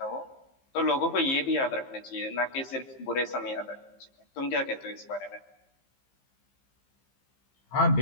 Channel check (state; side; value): late; right; 15 ms